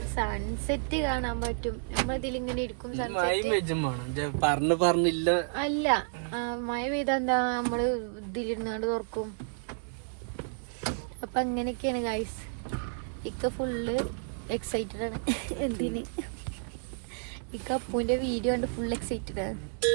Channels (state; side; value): silent; left; digital silence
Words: സൺസെറ്റ് കാണാൻ പറ്റും. നമ്മളിതിലിങ്ങനെ ഇരിക്കും. പറഞ്ഞില്ല അല്ല, മഴ പെയ്തെന്താ നമ്മള് ഇതിലിരുന്നാണ്ട് തുറക്കും. അപ്പൊ അങ്ങനെയൊക്കെയാണ് ഗൈസ്. ഇക്ക ഫുള്ള് എക്സൈറ്റഡ് ആണ്. എന്തിന്? ഇക്ക അപ്പൂന്റെ വീഡിയോ കണ്ട് ഫുൾ എക്സൈറ്റഡ് ആണ്.